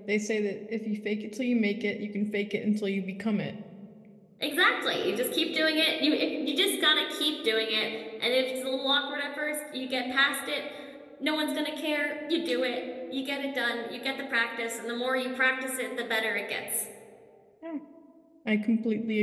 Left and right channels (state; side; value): identical; both; correlation 1.00